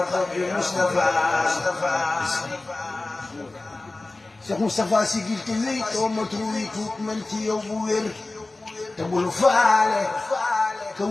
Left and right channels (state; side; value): quieter; right; 3.1 dB